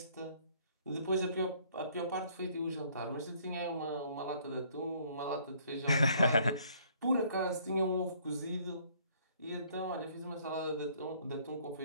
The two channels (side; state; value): both; inverted; correlation -0.61